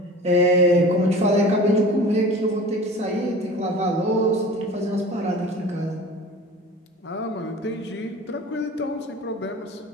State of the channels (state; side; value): normal; both; correlation 0.40